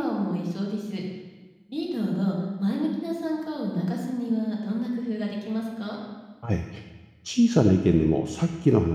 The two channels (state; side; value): identical; both; correlation 1.00